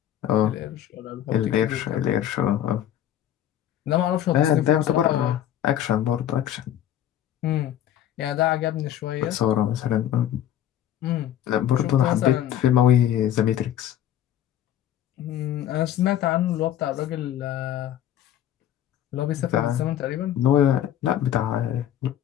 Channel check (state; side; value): quieter; right; 11.3 dB